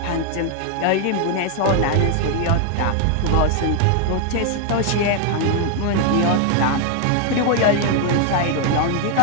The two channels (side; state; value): both; different; correlation 0.00